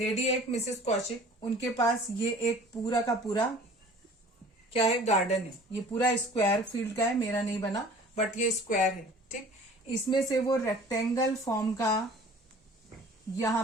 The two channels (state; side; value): normal; both; correlation 0.47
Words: एक मिसेस कौशिक, उनके पास ये एक पूरा का पूरा क्या है? गार्डन है। ये पूरा स्क्वायर फील्ड का है, मेरा नहीं बना बट ये स्क्वायर है। ठीक, इसमें से वो रेक्टेंगल फॉर्म का यहाँ